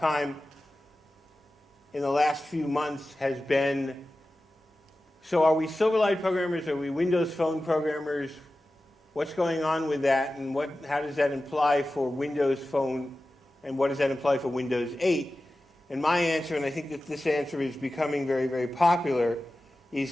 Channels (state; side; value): normal; both; correlation 0.95